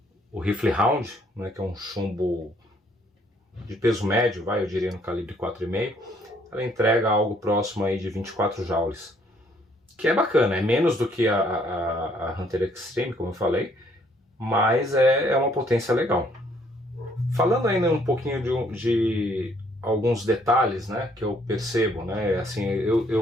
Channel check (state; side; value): normal; both; correlation 0.65